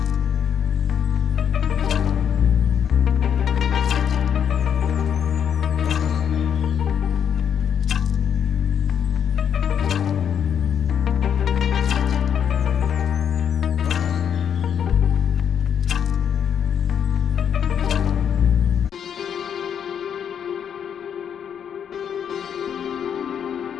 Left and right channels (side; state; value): right; quieter; 8.3 dB